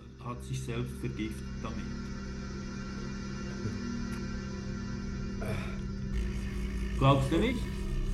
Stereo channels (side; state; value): both; identical; correlation 1.00